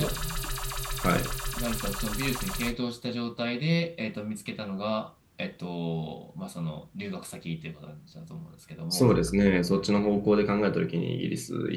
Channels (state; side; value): identical; both; correlation 1.00